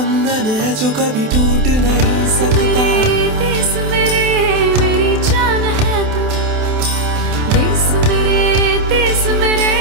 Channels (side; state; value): left; late; 28 ms